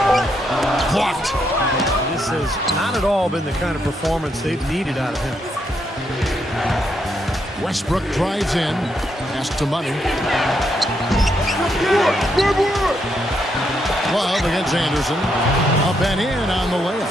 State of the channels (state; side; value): normal; both; correlation 0.78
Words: Blocked. This has not at all been the kind of performance they've needed out of him. Westbrook drives in. Pass to Money. Love 12 against Anderson. Up and in on the layup.